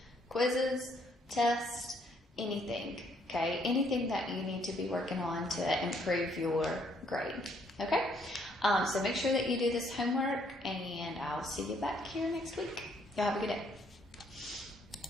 quizzes, tests, anything, okay? Anything that you need to be working on to improve your grade, okay? So make sure that you do this homework, and I'll see you back here next week. Y'all have a good day.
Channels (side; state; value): both; normal; correlation 0.68